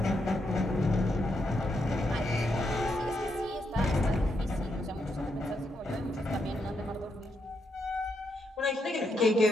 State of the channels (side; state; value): both; normal; correlation 0.80